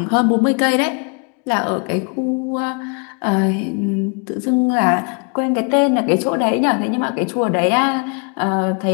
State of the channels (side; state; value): right; quieter; 37.0 dB